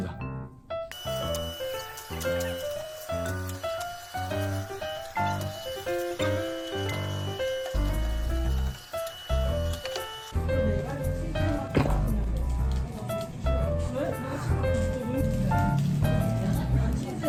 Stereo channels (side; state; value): both; identical; correlation 1.00